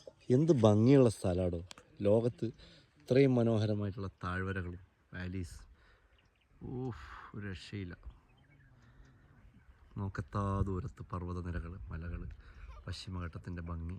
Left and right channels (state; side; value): identical; both; correlation 1.00